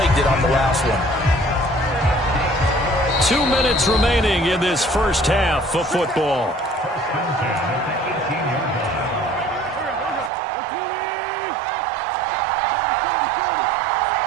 it on the last one. 2 minutes remaining in this first half of football.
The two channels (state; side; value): drops out; left; at 10.3 s